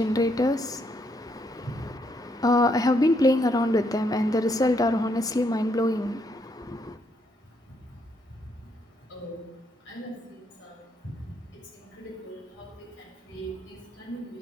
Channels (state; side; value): normal; both; correlation 0.74